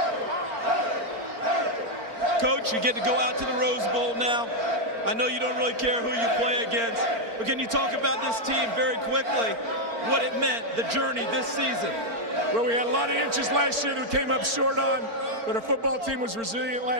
Coach, you get to go out to the Rose Bowl now. I know you don't really care who you play against, but can you talk about this team very quickly, what it meant, the journey this season? Well, we had a lot of inches last year that we came up short on, but our football team was resilient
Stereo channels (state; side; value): late; left; 4.4 ms